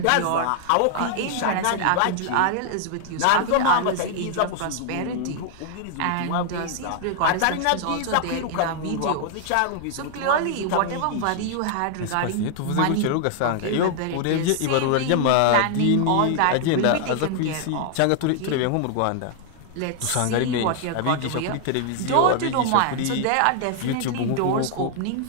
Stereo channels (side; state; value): both; different; correlation 0.00